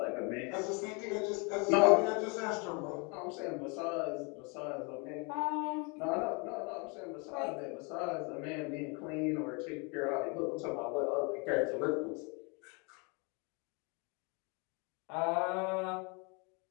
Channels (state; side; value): quieter; right; 32.2 dB